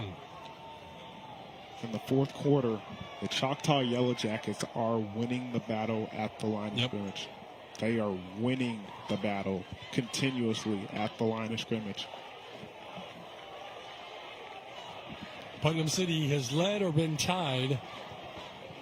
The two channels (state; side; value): identical; both; correlation 1.00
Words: In the fourth quarter, the Choctaw Yellow Jackets are winning the battle at the line of scrimmage. They are winning the battle continuously at the line of scrimmage. Putnam City has led or been tied